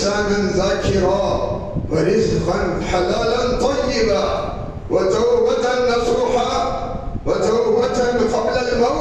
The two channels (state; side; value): identical; both; correlation 1.00